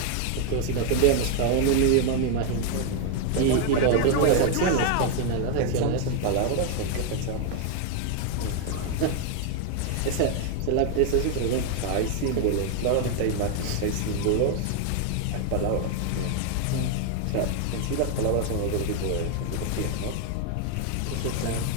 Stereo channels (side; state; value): both; different; correlation 0.01